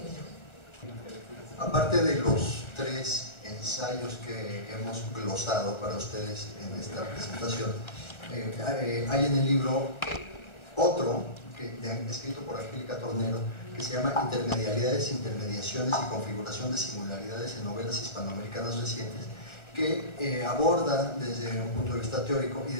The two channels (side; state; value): right; late; 1.3 ms